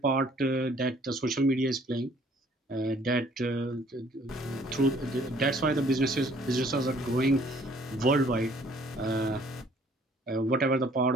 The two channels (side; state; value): both; normal; correlation 0.59